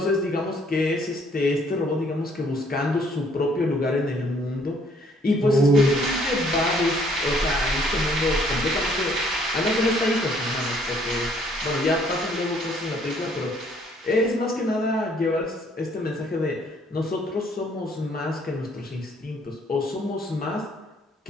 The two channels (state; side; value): normal; both; correlation 0.63